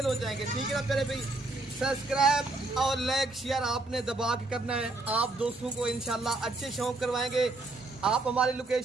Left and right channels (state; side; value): quieter; left; 3.1 dB